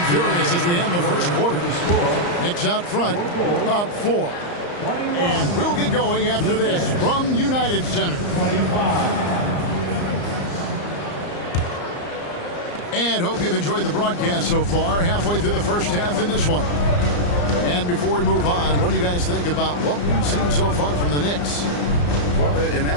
furious as we end the first quarter. Knicks out front, up 4. And we'll get going after this from United Center. And hope you've enjoyed the broadcast so far. Halfway through the first half in this one. And before we move on, what do you guys think about what we've seen so far from the Knicks? Well, in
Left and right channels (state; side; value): late; right; 34 ms